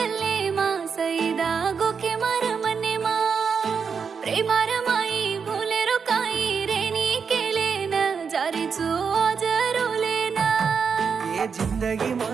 मा सईदा गोखे मार मने मा प्रेमार माई भूले रो काई रेनी केले न जारी चो आज रोले ना ये जिंदगी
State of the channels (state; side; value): quieter; left; 6.1 dB